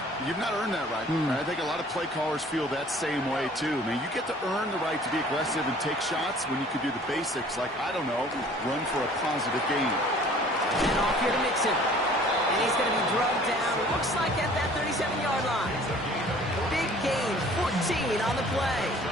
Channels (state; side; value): normal; both; correlation 0.51